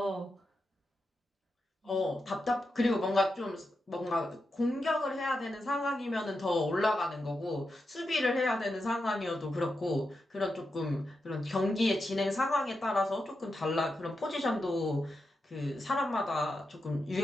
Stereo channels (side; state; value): both; normal; correlation 0.88